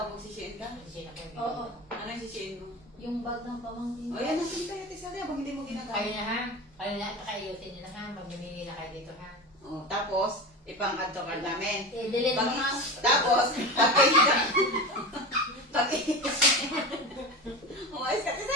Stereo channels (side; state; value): both; normal; correlation 0.26